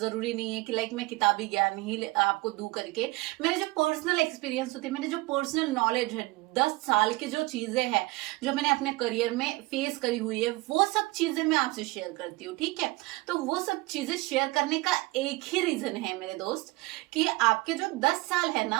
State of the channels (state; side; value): quieter; left; 21.9 dB